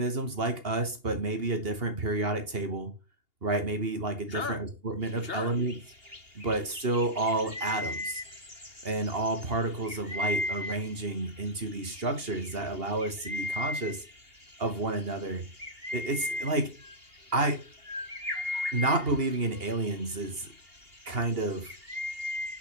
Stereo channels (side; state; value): left; late; 2.8 ms